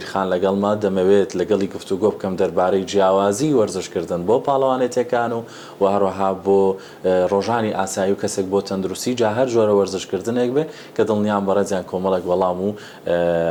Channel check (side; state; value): both; identical; correlation 1.00